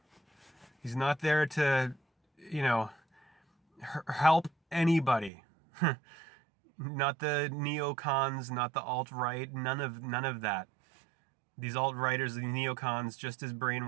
He's not there to, help anybody. Not the neocons, not the alt-right, none of that. These alt-righters, the neocons, just as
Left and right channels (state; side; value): drops out; left; at 5.3 s